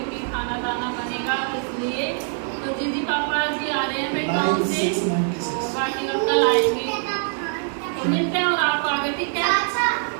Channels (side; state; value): left; silent; 61 dB below the other